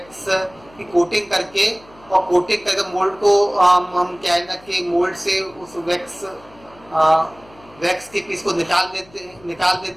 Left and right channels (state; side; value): noise; left; hum, 26 dB below the sound